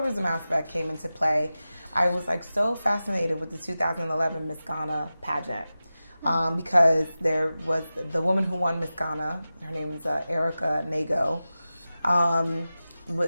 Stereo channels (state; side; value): inverted; both; correlation -0.95